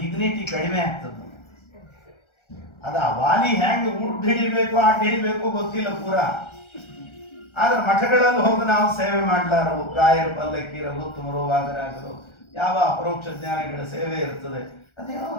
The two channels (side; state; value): right; late; 1.3 ms